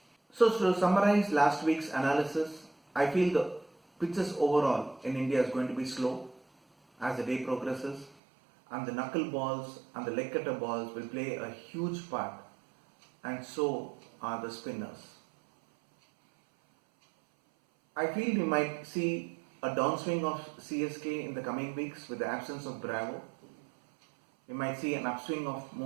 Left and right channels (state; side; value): drops out; left; at 8.2 s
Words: So to summarize last week's analysis, I feel the pitches overall in India is going to be slow as the day progresses, and the knuckle balls and the leg cutter balls will play a huge part, and so are the spinners. I feel we might see a downswing of CSK in the coming weeks with the absence of Bravo. We might see an upswing of